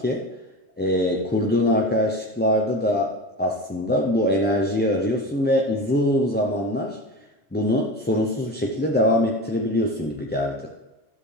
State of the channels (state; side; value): normal; both; correlation 0.28